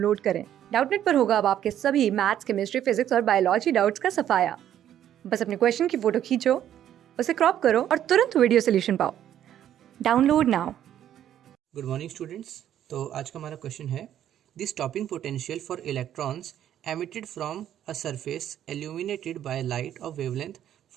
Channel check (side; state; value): left; quieter; 10.9 dB